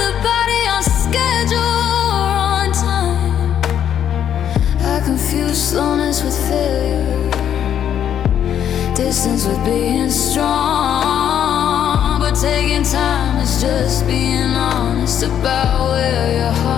the body on schedule or on time. I confuse slowness with failure, distance with being strong. But taking time is just being honest about where your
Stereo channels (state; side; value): quieter; right; 9.6 dB